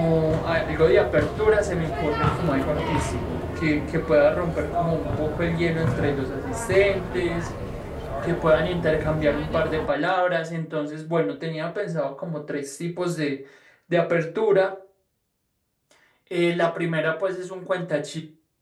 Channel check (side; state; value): both; identical; correlation 1.00